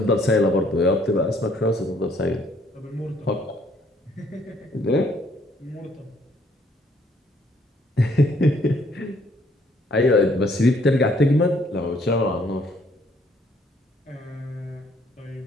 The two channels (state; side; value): normal; both; correlation 0.65